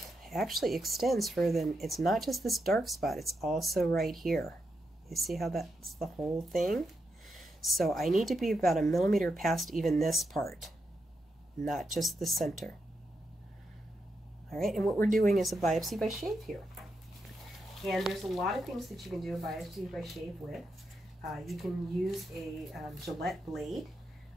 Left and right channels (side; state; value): both; normal; correlation 0.84